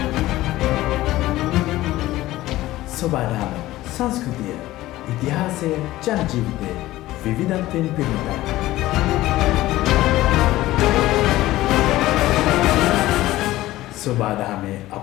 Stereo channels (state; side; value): quieter; right; 16.4 dB